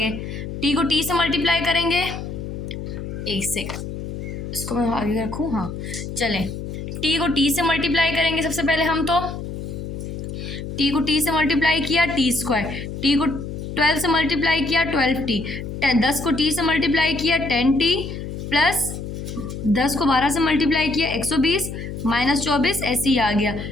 टी को टी से मल्टीप्लाई करेंगे, एक सेकंड इसको मैं आगे रखूँ, हाँ चलें, टी को टी से मल्टीप्लाई करेंगे सबसे पहले हम, तो टी को टी से मल्टीप्लाई किया टी स्क्वायर, टी को 12 से मल्टीप्लाई किया 12t, 10 को टी से मल्टीप्लाई किया 10t, प्लस 10 को 12 से मल्टीप्लाई किया 120 माइनस 24, ऐसे ही आ गया।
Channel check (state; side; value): noise; left; hum, 7 dB below the sound